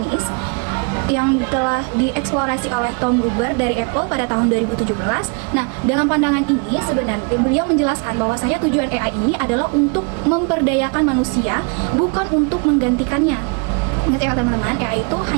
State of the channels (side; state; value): left; quieter; 35.4 dB